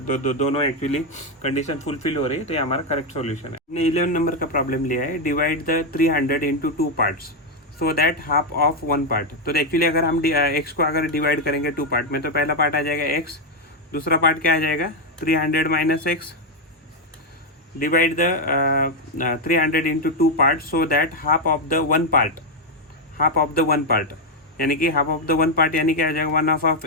एक्चुअली कंडीशन फुलफिल हो रही है, तो ये हमारा करेक्ट सॉल्यूशन है। हमने 11 नंबर का प्रॉब्लम लिया है, divide the 300 into 2 parts so that half of 1 part. तो एक्चुअली अगर हम x को अगर डिवाइड करेंगे 2 पार्ट में, तो पहला पार्ट आ जाएगा x, दूसरा पार्ट क्या आ जाएगा 300 minus x, divide the 300 into 2 parts so that half of the one part, यानी कि half of the one part यानी क्या आ जाएगा, one half of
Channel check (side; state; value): both; normal; correlation 0.03